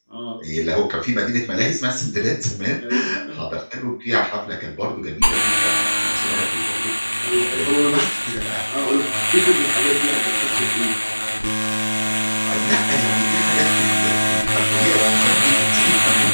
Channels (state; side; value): inverted; both; correlation -1.00